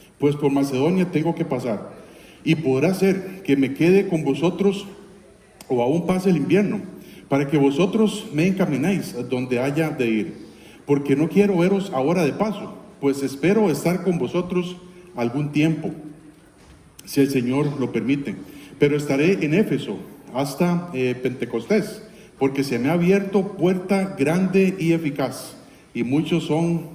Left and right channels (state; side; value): identical; both; correlation 1.00